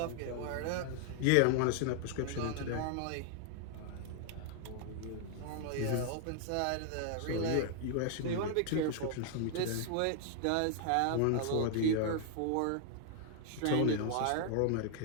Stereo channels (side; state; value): both; different; correlation 0.00